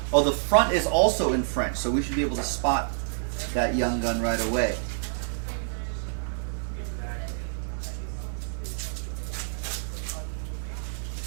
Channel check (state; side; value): silent; left; digital silence